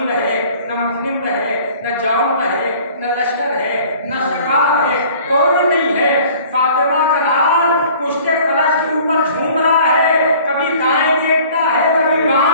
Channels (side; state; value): both; inverted; correlation -0.50